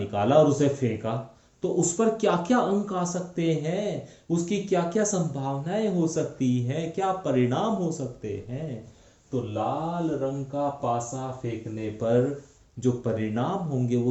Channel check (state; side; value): identical; both; correlation 1.00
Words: और उसे फेंका, तो उस पर क्या क्या अंक आ सकते हैं, उसकी क्या क्या संभावनाएं हो सकती हैं, क्या परिणाम हो सकते हैं। तो लाल रंग का पासा फेंकने पर जो परिणाम होंगे